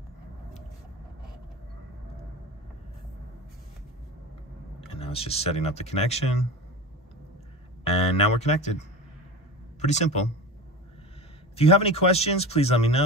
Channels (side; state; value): both; normal; correlation 0.29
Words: And now it's just setting up the connection. And now we're connected. Pretty simple. If you have any questions, please let me